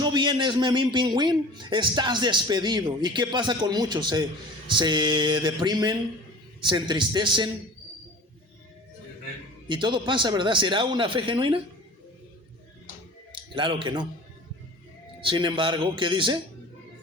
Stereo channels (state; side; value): normal; both; correlation 0.40